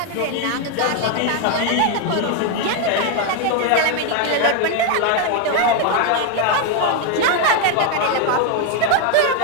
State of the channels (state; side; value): different; both; correlation 0.01